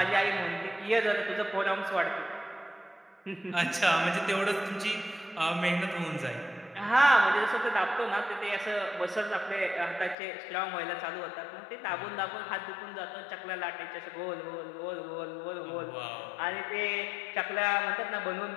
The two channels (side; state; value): right; drops out; at 10.2 s